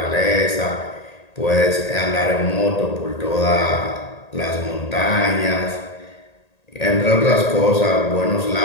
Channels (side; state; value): right; late; 1.8 ms